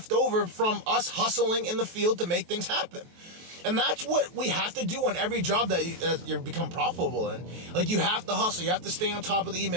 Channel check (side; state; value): left; late; 23 ms